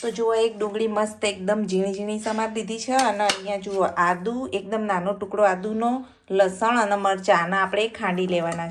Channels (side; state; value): both; identical; correlation 1.00